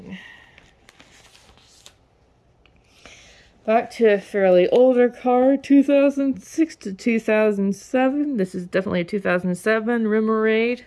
Back to a fairly older card, 2006 to 2007. This is definitely a 2007 Remoraid.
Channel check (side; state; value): both; identical; correlation 1.00